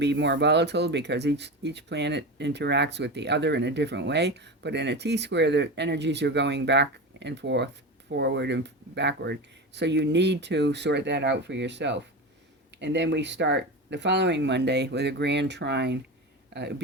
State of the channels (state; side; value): normal; both; correlation 0.24